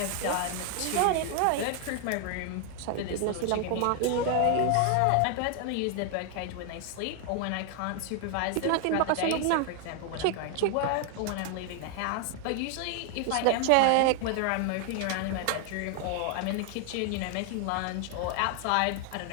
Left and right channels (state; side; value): different; both; correlation 0.00